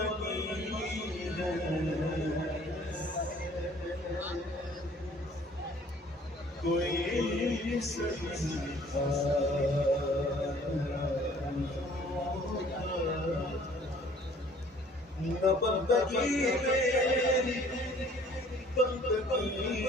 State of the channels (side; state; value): both; normal; correlation 0.55